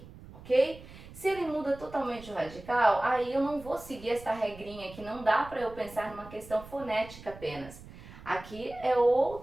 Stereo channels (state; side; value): noise; right; rumble, 17 dB below the sound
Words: ok? Se ele muda totalmente o radical, aí eu não vou seguir essa regrinha que não dá para eu pensar numa questão fonética apenas. Aqui é